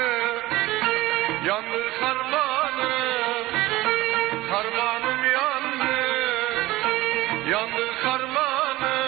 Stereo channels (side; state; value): left; quieter; 18.0 dB